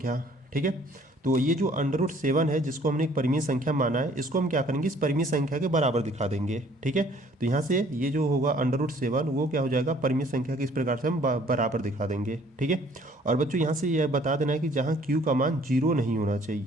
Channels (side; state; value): both; normal; correlation 0.58